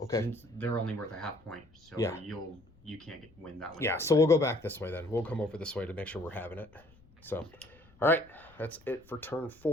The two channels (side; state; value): left; noise; rumble, 28 dB below the sound